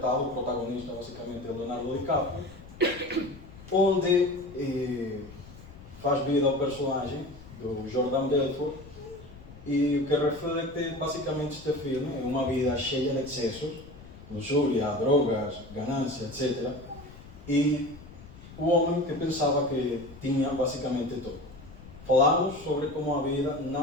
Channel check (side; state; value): left; noise; rumble, 18 dB below the sound